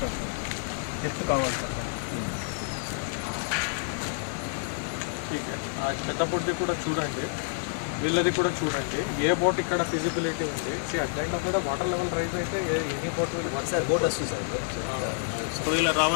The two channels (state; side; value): silent; right; digital silence